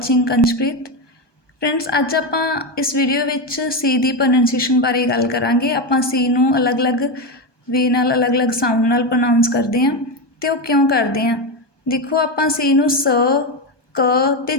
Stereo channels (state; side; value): late; right; 1.2 ms